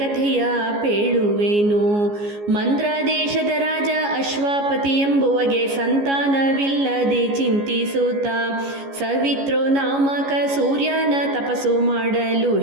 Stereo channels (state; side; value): late; left; 14 ms